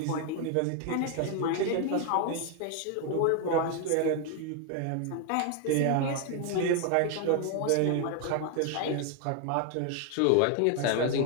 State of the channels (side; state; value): both; different; correlation 0.01